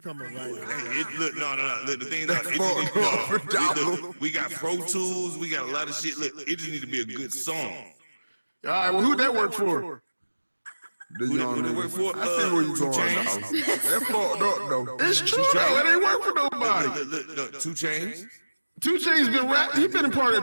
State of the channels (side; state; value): both; inverted; correlation -1.00